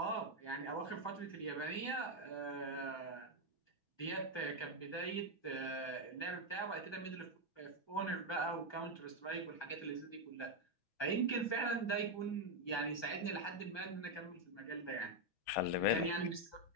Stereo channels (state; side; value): late; right; 6.2 ms